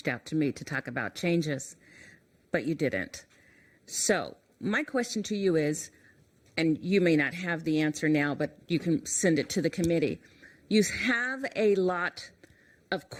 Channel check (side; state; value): both; identical; correlation 1.00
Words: out to me to talk about changes, but you didn't. So my question to you is, and you may not have the answer now, but you can send it to the committee. You have a lot of